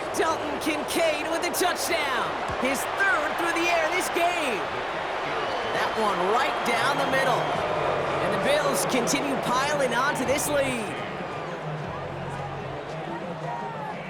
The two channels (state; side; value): identical; both; correlation 1.00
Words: Dalton Kincaid with a touchdown. His 3rd through the air this game. That one right down the middle. And the Bills continue piling on to this lead.